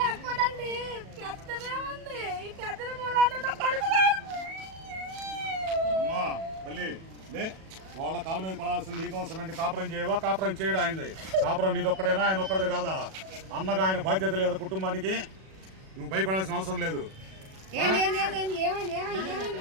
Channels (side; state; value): left; late; 37 ms